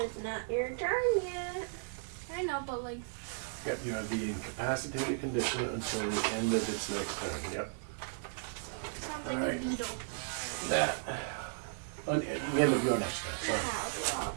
not your turn yet. I know, but like. yep, you have the incapacitated condition until the end of its next turn. Yep. Sounds like Alright. a beetle. That. the end of your next turn. Sorry.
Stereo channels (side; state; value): left; silent; digital silence